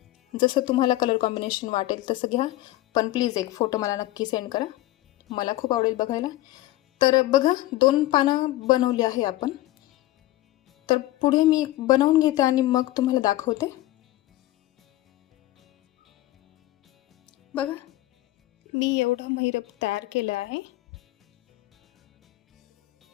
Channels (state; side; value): quieter; right; 16.5 dB